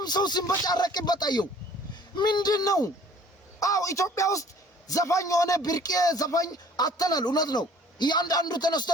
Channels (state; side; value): normal; both; correlation 0.53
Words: ሰው ሲንበጫረቅበት አየው ምንድነው? አው ኢትዮጵያ ውስጥ ዘፋኝ ሆነ ብርቄ ዘፋኝ አተናል እውነት ነው። ያንዳንዱ ተነስቶ